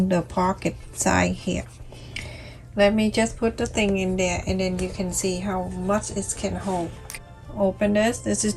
the pocket side here. Let me just put the thing in there, and then you can see how much it can hold. Open this is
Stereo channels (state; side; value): identical; both; correlation 1.00